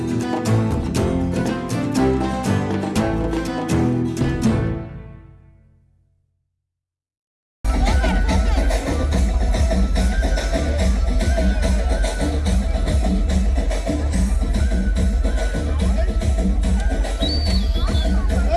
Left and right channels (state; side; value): identical; both; correlation 1.00